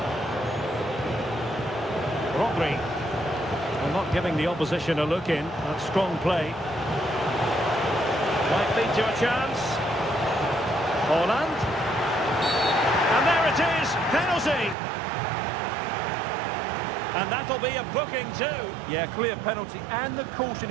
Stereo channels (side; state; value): left; drops out; at 14.8 s